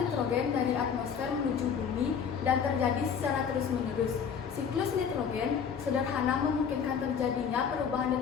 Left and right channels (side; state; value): right; quieter; 7.0 dB